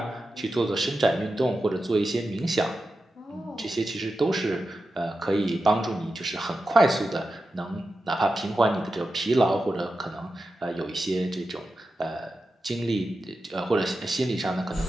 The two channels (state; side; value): normal; both; correlation 0.91